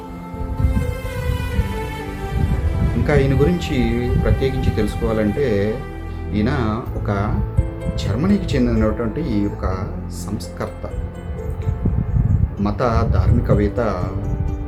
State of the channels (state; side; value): identical; both; correlation 1.00